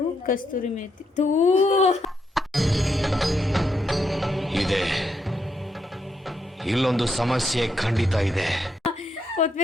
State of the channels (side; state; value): both; normal; correlation 0.78